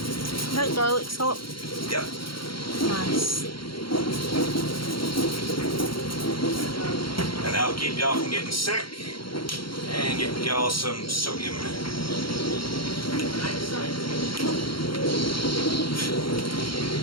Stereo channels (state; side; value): late; right; 0.73 ms